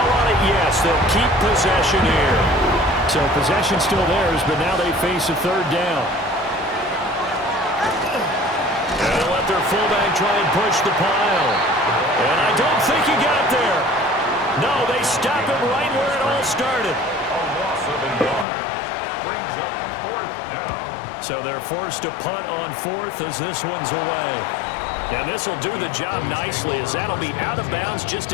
on it. Yes, they'll keep possession here. So possession still theirs, but now they face a third down. And they'll let their fullback try and push the pile. And I don't think he got there. No, they stop him right where it all started. A loss of a yard brings up 4th down. So they're forced to punt on 4th as this one's away. And this will do the job nicely as that'll be out of bounds just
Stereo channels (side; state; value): right; drops out; at 18.4 s